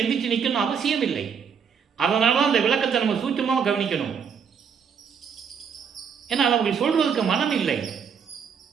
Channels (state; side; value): quieter; left; 6.8 dB